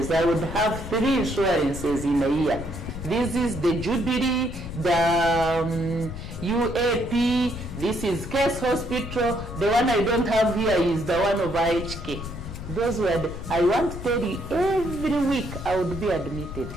I would have 3 insurances in a year. This is the Jubilee, the UAP, this is Case Hospital. The one I don't have here is the one of IHK. Those were I want to tell you, every week I would be admitted.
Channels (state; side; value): noise; left; rumble, 9 dB below the sound